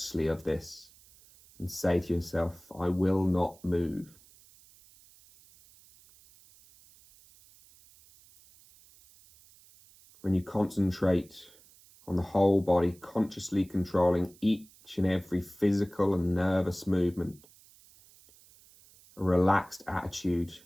of this and say to yourself, I will not move. When you concentrate on the whole body, consciously controlling each and every physical and nervous movement, a relaxed attitude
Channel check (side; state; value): right; noise; hiss, 26 dB below the sound